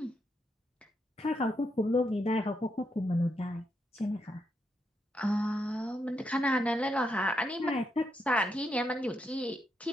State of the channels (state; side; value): normal; both; correlation 0.81